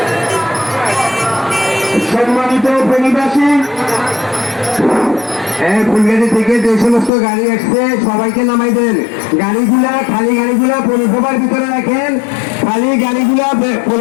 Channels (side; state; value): right; drops out; at 7.1 s